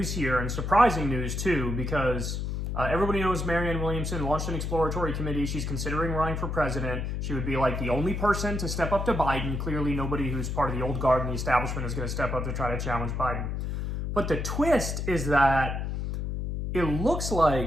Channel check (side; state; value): left; noise; hum, 2 dB below the sound